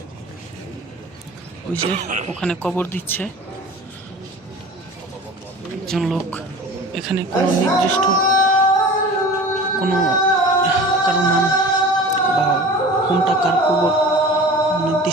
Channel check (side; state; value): both; normal; correlation 0.39